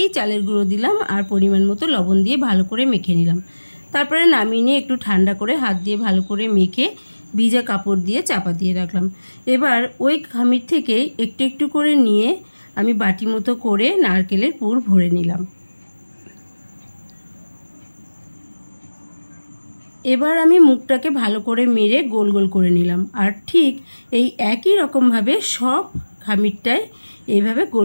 চালের গুঁড়ো দিলাম আর পরিমাণ মতো লবণ দিয়ে ভালো করে মেখে নিলাম। তারপরে নামিয়ে নিয়ে একটু ঠান্ডা করে হাত দিয়ে ভালো করে মেখে ভিজা কাপড় দিয়ে চাপা দিয়ে রাখলাম। এবার ওই খামির থেকে একটু একটু করে নিয়ে আমি বাটি মতো করে নারকেলের পুর ভরে নিলাম। এবার আমি মুখটাকে ভালো করে মেরে গোল গোল করে নিলাম আর ঠিক এই একই রকমভাবে সব খামিরটায় এইভাবে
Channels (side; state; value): both; inverted; correlation -1.00